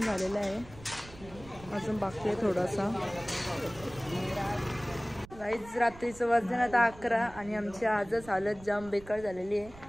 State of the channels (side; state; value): right; noise; rumble, 19 dB below the sound